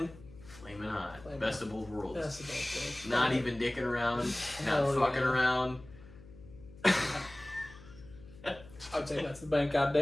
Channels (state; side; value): noise; left; hum, 20 dB below the sound